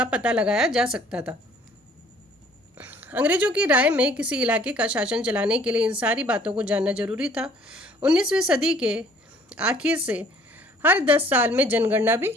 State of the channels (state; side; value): normal; both; correlation 0.56